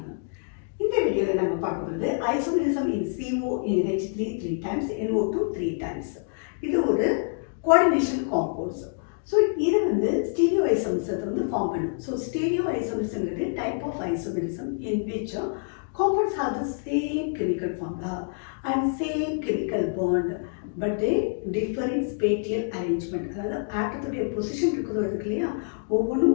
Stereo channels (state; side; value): silent; right; digital silence